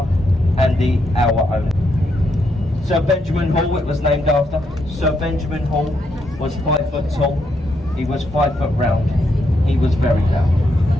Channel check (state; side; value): normal; both; correlation 0.78